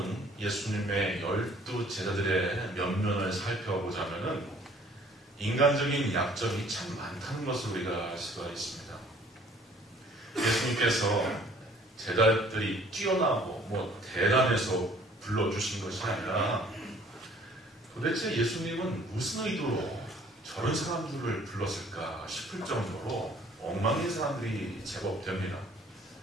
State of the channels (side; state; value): both; normal; correlation 0.56